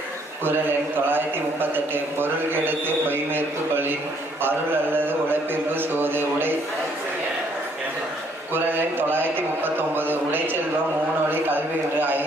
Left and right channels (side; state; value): both; normal; correlation 0.66